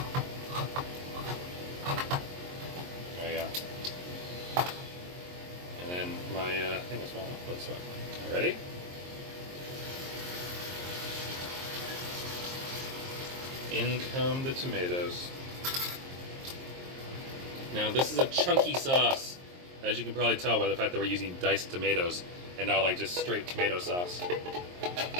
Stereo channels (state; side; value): late; left; 23 ms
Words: There you go. And then my thing is small enough, but it's fine. Ready? In come the tomatoes. Now this is a chunky sauce, as you can probably tell by the fact that we're using diced tomatoes and not like just straight tomato sauce.